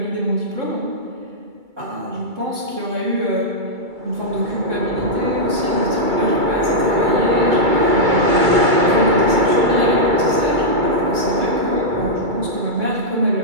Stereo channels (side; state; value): left; late; 2.3 ms